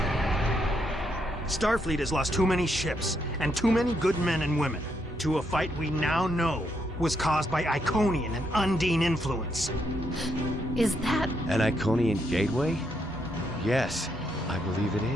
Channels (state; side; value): normal; both; correlation 0.77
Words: Starfleet has lost too many ships and too many good men and women to a fight we now know was caused by Iconian and Undine influence. Is that... An Iconian gateway? Yes, I believe it